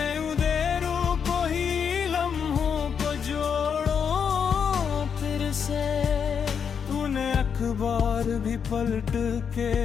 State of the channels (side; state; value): right; quieter; 7.0 dB